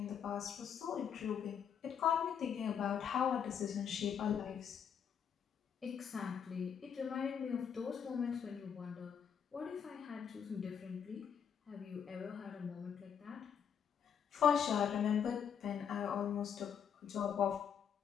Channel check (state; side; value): quieter; right; 7.8 dB